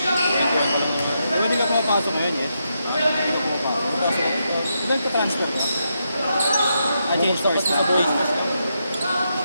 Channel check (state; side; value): inverted; both; correlation -0.83